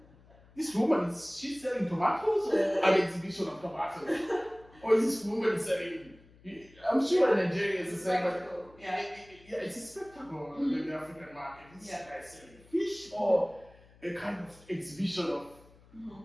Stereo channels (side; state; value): left; noise; hum, 26 dB below the sound